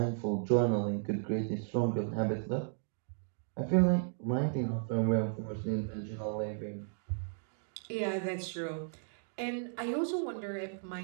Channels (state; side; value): silent; left; digital silence